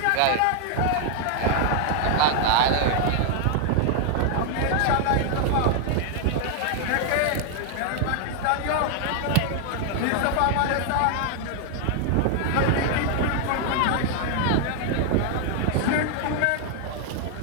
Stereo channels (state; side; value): different; both; correlation 0.00